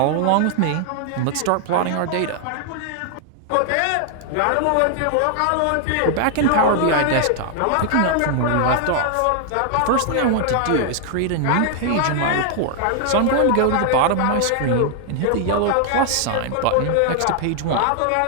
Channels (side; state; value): both; different; correlation 0.00